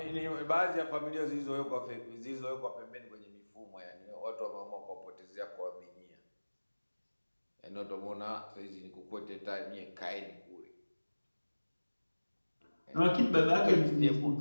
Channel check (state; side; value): inverted; both; correlation -1.00